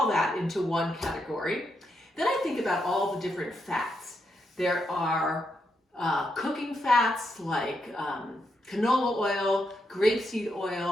that into one category. Then I think about all the different fats. There are cooking fats like canola oil, grapeseed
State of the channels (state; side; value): normal; both; correlation 0.82